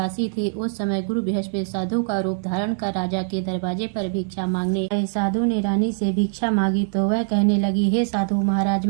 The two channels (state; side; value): silent; left; digital silence